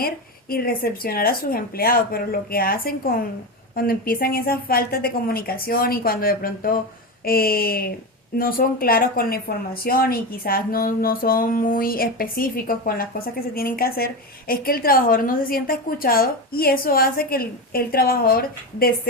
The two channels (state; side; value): normal; both; correlation 0.18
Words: y recepcionar a sus empleados, pero lo que hacen cuando empiezan esas faltas de comunicación y cuando de pronto no son claros con la información y quizás no son muy específicos con las cosas que se tienen que hacer, es que el trabajador no se sienta escuchado y eso hace que el trabajador